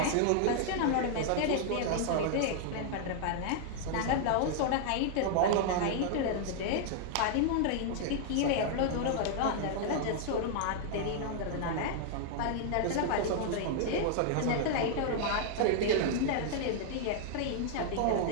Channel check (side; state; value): both; different; correlation -0.01